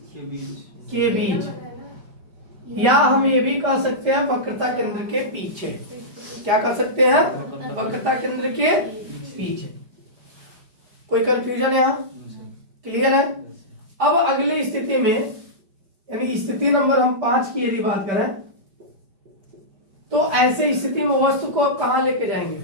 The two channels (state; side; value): late; left; 5.1 ms